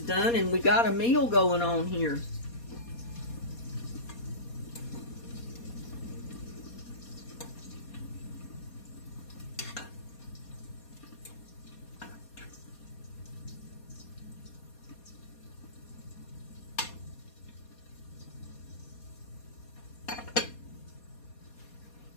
and we got a meal going on here.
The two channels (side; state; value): right; late; 4.2 ms